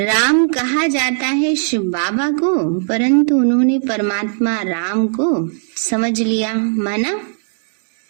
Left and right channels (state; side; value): silent; left; digital silence